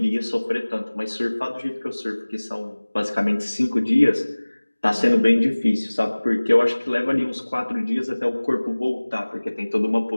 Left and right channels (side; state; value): both; inverted; correlation -1.00